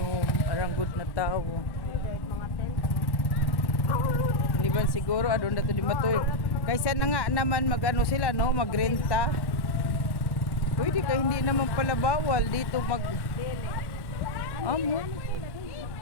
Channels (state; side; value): late; right; 1.1 ms